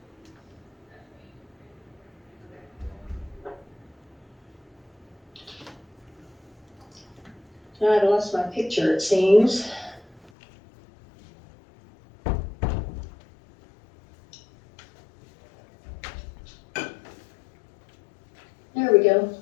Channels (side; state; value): right; drops out; at 10.3 s